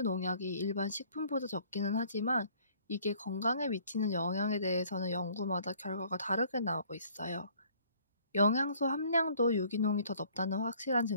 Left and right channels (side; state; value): both; inverted; correlation -0.57